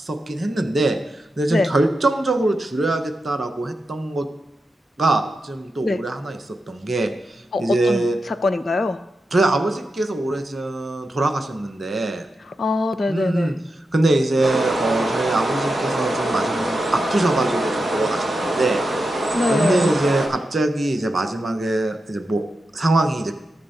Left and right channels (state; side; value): normal; both; correlation 0.89